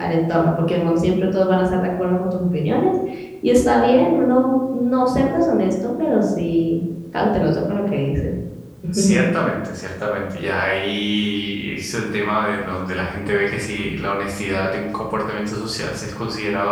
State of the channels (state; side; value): identical; both; correlation 1.00